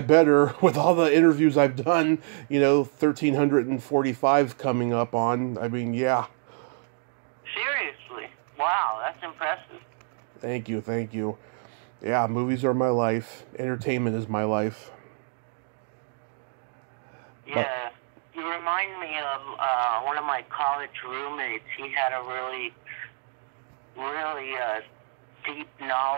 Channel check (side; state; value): left; silent; digital silence